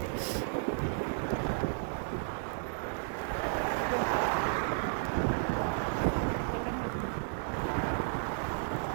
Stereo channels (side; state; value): left; silent; 56 dB below the other